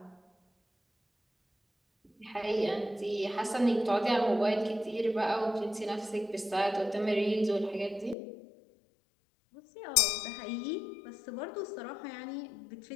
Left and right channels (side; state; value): right; drops out; at 8.2 s